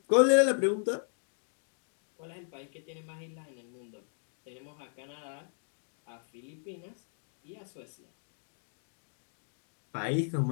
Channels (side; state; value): right; silent; digital silence